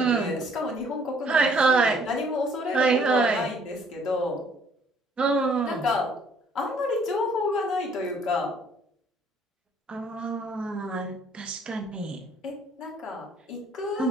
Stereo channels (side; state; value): both; normal; correlation 0.61